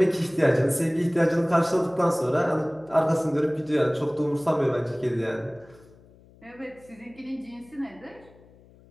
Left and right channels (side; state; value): left; noise; hum, 26 dB below the sound